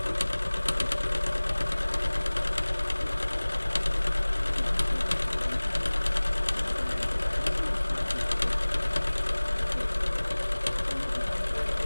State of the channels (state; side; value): inverted; both; correlation -1.00